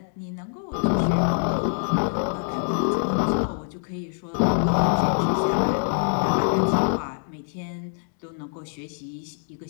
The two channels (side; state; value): right; silent; 58 dB below the other